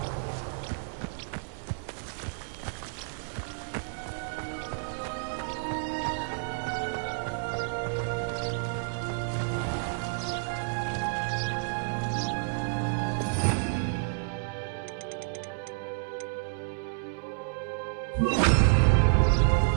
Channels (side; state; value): left; silent; 58 dB below the other